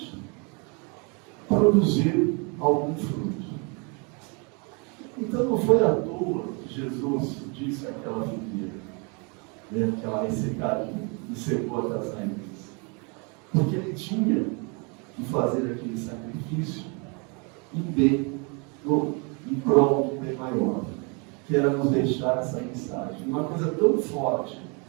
produzir algum fruto. Então não foi à toa que Jesus disse àquela figueira, que ela ressecaria e secou até as raízes. Porque ele tinha que fazer aquele sacrifício em prol de um bem maior, que era nos deixar essa mensagem. Uma coisa tão forte,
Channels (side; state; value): left; quieter; 33.3 dB